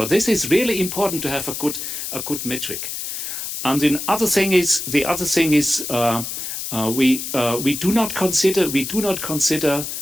this is really important to have a good metric. And the other thing is we do not consider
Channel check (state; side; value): noise; left; hiss, 5 dB below the sound